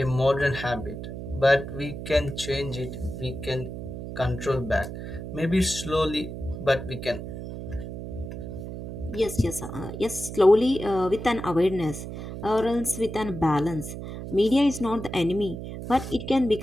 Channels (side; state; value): right; noise; hum, 8 dB below the sound